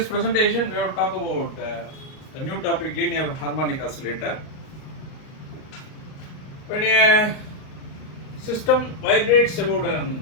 presentation, we have talk about a new topic, linear harmonic oscillator. When a system vibrates about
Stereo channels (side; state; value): right; late; 38 ms